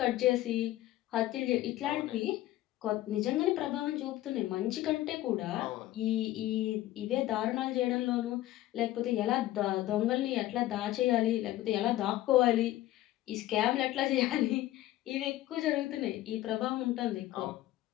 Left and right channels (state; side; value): quieter; right; 15.3 dB